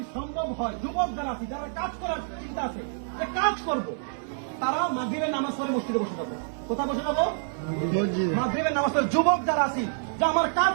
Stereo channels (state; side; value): silent; left; 56 dB below the other